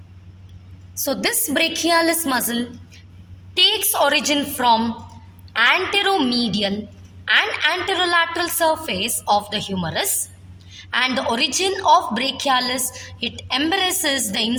So this brachialis muscle takes origin from anteromedial and anterolateral surface of the humerus, and the origin of brachialis, it embraces the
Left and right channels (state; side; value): identical; both; correlation 1.00